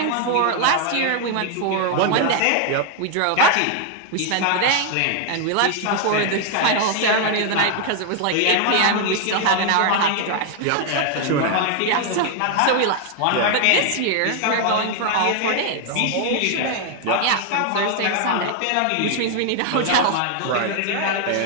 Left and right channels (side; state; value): both; different; correlation 0.00